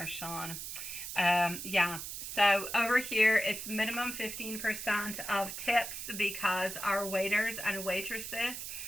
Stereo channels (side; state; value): right; noise; hiss, 7 dB below the sound